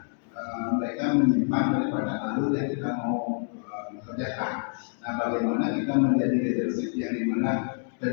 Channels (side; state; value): right; silent; 60 dB below the other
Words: mereka menyimpang daripada alur yang kita mau kerjakan. Nah, bagaimana kita menjadi leadership yang dimana